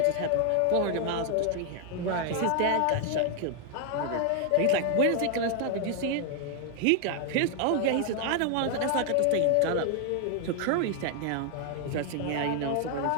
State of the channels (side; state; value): both; different; correlation 0.00